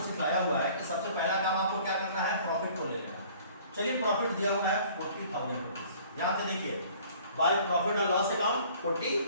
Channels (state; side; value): inverted; both; correlation -0.53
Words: सिखाया हुआ है कि सबसे पहला काम आपको क्या करना है? प्रॉफिट को ले लेना। चलिए प्रॉफिट दिया हुआ है 40,000 रुपीज। ध्यान से देखिए, बाय प्रॉफिट और लॉस अकाउंट